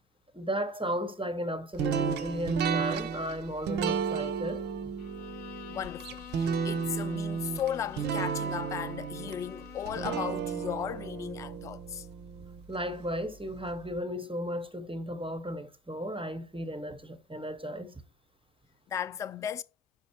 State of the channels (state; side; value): normal; both; correlation 0.40